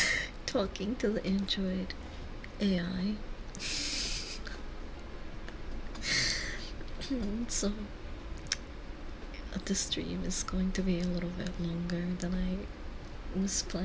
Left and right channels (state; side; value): identical; both; correlation 1.00